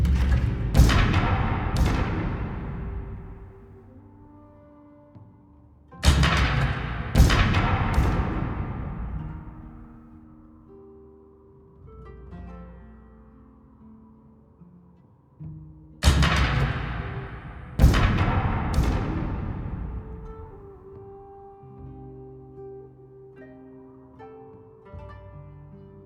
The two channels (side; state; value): both; identical; correlation 1.00